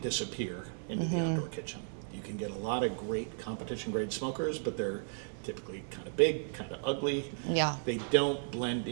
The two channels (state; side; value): silent; left; digital silence